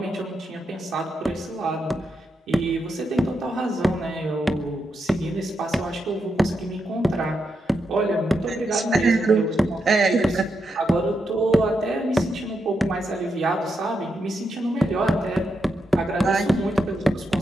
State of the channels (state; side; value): normal; both; correlation 0.84